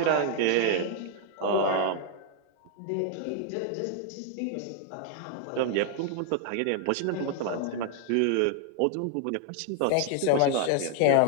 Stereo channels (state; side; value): different; both; correlation 0.00